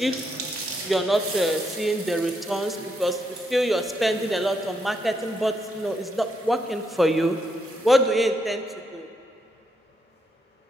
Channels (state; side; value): normal; both; correlation 0.78